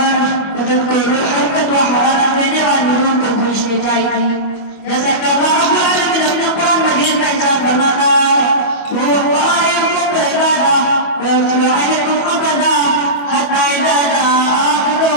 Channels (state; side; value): late; right; 25 ms